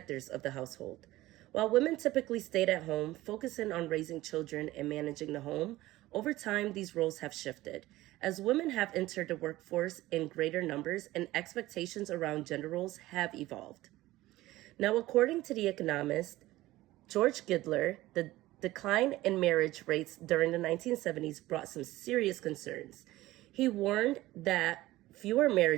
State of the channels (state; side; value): quieter; left; 17.2 dB